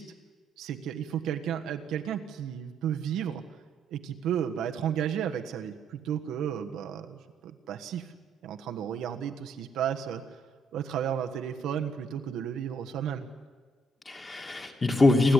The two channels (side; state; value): both; normal; correlation 0.72